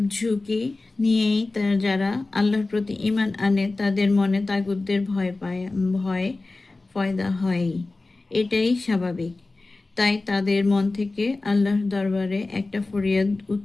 ঝুঁকি নিয়েই যারা আল্লাহর প্রতি ঈমান আনে তাদের মনে তাগুতদের ভয় পয়দা হয়। এটাই স্বাভাবিক। তাই তাদের মন থেকে আল্লাহর দরবারে একটা ফরিয়াদ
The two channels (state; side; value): quieter; right; 3.3 dB